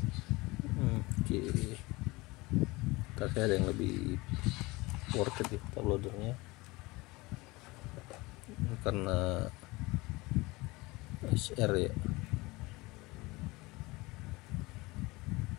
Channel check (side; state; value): right; quieter; 22.6 dB